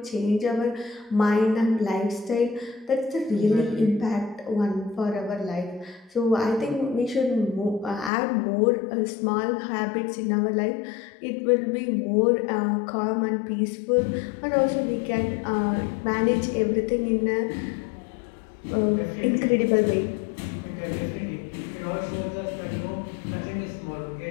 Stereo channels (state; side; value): drops out; right; at 8.1 s